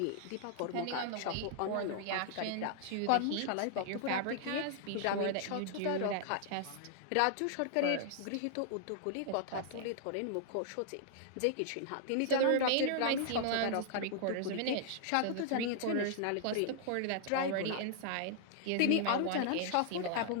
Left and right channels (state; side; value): different; both; correlation -0.01